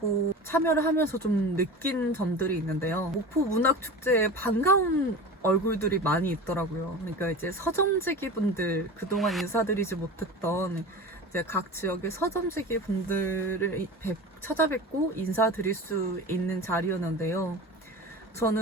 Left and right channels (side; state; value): both; normal; correlation 0.32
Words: 참여를 하면서 좀 느낀 점들이 있는데요. 목포 문학 축제에 반가운 얼굴들이 많이 있더라고요. 그러니까 이제 서점지기 분들, 그동안 인사드리지 못했던 이제 각 지역의 서점지기 분들을 찾아뵙고 인사드릴 수 있는 자리였는데요.